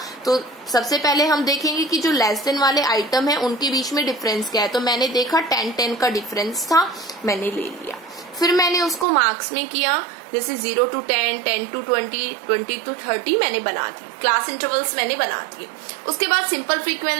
तो सबसे पहले हम देखेंगे कि जो लेस देन वाले आइटम है उनके बीच में डिफरेंस क्या है। तो मैंने देखा 10-10 का डिफरेंस था, मैंने ले लिया। फिर मैंने उसको मार्क्स में किया, जैसे 0 to 10, 10 to 20, 20 to 30 मैंने बना दी, क्लास इंटरवल्स मैंने बना दिए। उसके बाद सिंपल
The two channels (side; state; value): left; drops out; at 9.1 s